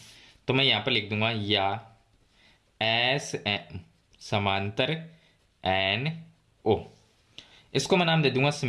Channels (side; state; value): both; identical; correlation 1.00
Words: तो मैं यहाँ पर लिख दूंगा या एस एम समांतर एन ओ, इसको मैं नाम दे दूंगा